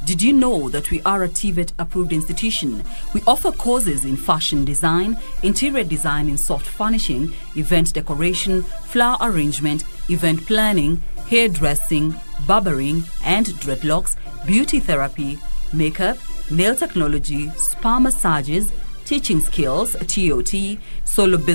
Did you know that we are a TVET approved institution? We offer courses in fashion design, interior design in soft furnishing, event decoration, flower arrangement, event planning, hairdressing, barbering and dreadlocks, beauty therapy, makeup, nail technology, spa massages, teaching skills, TOT, solo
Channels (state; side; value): inverted; both; correlation -1.00